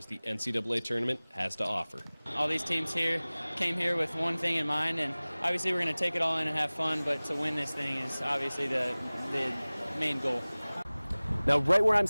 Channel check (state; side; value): inverted; both; correlation -0.99